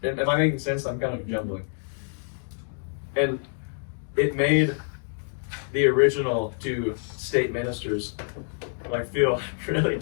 Am I making sense? I'm kind of jumbling. And it made the original two state ministers like feel really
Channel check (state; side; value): silent; right; 58 dB below the other